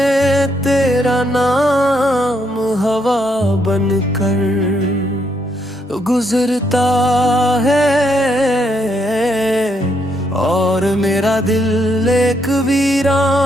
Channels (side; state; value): both; normal; correlation 0.75